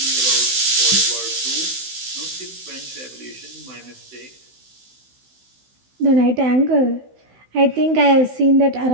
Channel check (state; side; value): late; left; 16 ms